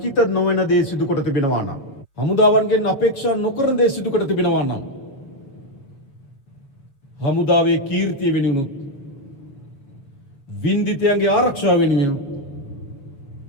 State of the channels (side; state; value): right; late; 7.3 ms